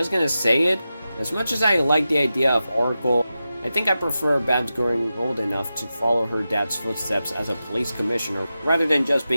gonna say it, as much as I like the idea of Oracle, I think I prefer Babs growing old enough to follow her dad's footsteps as a police commissioner, rather than just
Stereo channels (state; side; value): inverted; both; correlation -0.92